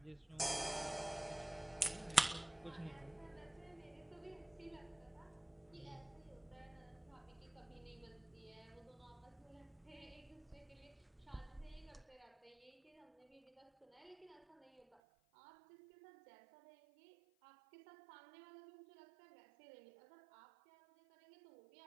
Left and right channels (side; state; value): left; drops out; at 14.9 s